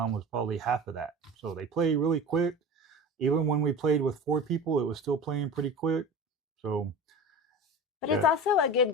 was probably half of that. So they play really quick. Even when we played with 4 people, it was still playing pretty quick. So. But it's also a good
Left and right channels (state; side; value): normal; both; correlation 0.33